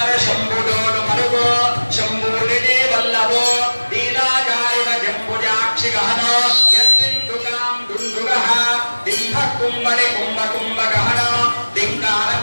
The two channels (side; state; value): both; inverted; correlation -1.00